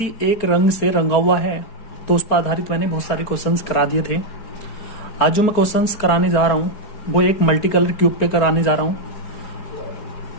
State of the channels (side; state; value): right; late; 4.7 ms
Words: एक रंग से रंगा हुआ है तो उस पर आधारित मैंने बहुत सारे क्वेश्चंस करा दिए थे। आज जो मैं क्वेश्चंस कराने जा रहा हूँ वो एक मल्टी कलर क्यूब पे कराने जा रहा हूँ।